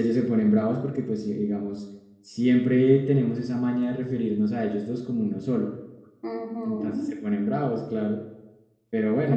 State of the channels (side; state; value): both; identical; correlation 1.00